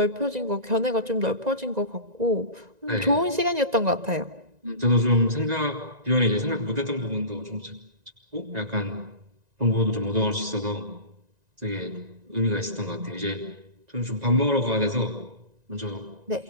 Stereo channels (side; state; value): left; late; 1.9 ms